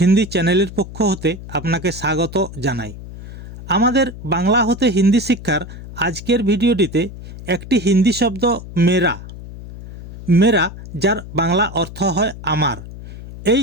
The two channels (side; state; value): left; noise; hum, 13 dB below the sound